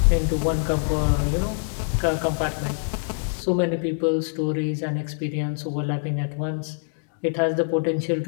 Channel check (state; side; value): silent; right; 62 dB below the other